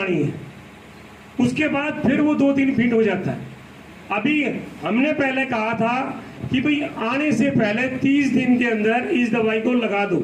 है, उसके बाद फिर वो 2-3 फीट हो जाता है। अभी हमने पहले कहा था कि भाई आने से पहले 30 दिन के अंदर इस दवाई को लगा दो।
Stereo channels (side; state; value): both; identical; correlation 1.00